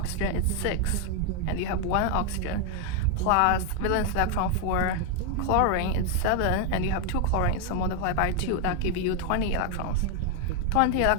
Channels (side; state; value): both; different; correlation 0.01